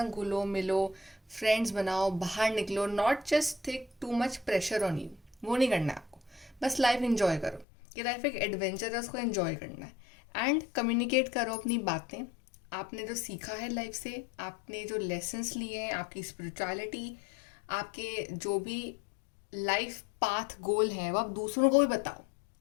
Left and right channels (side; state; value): right; drops out; at 7.7 s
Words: घुलो मिलो, फ्रेंड्स बनाओ, बाहर निकलो. Not just take too much pressure on you, वो नहीं करना है आपको. बस लाइफ एंजॉय करो. ये लाइफ एक एडवेंचर है, उसको एंजॉय करना है. एंड कम्युनिकेट करो अपनी बातें, आपने जो सीखा है लाइफ से, आपने जो लेसन्स लिए हैं, आपकी स्पिरिचुअलिटी, आपके जो भी लाइफ पाथ गोल है, वो आप दूसरों को भी बताओ.